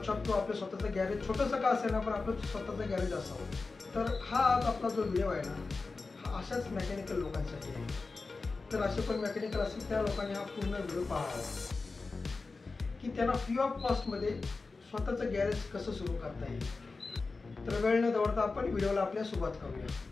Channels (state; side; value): quieter; right; 4.0 dB